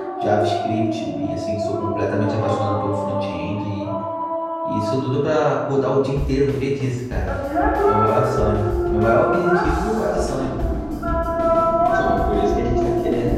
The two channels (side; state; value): both; identical; correlation 1.00